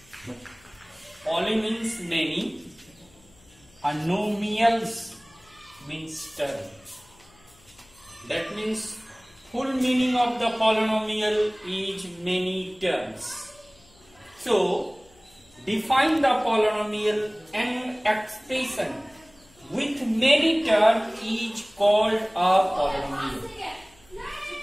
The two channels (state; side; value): noise; left; hum, 29 dB below the sound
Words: Poly means many. Anomials means term. That means full meaning of the polynomial is many terms. So, define the polynomial and expression with many terms is called a polynomial.